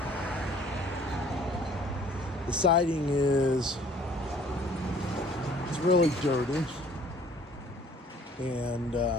The siding is really dirty, and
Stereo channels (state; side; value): normal; both; correlation 0.55